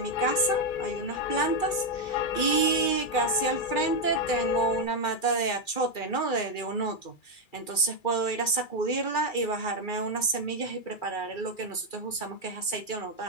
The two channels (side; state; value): right; late; 2.4 ms